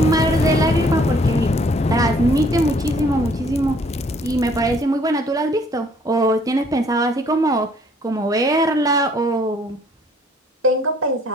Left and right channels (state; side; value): normal; both; correlation 0.61